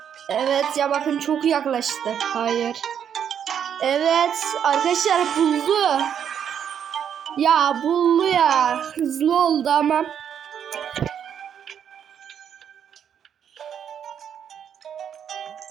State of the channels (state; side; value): quieter; left; 8.6 dB